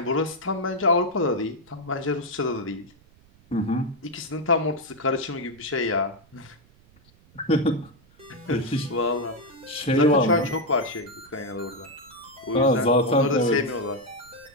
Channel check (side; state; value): right; noise; rumble, 28 dB below the sound